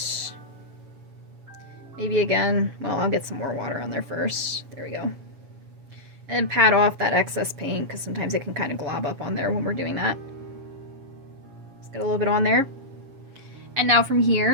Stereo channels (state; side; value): late; left; 7.2 ms